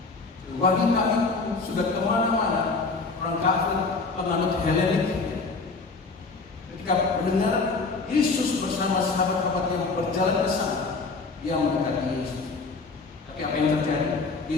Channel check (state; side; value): quieter; right; 4.1 dB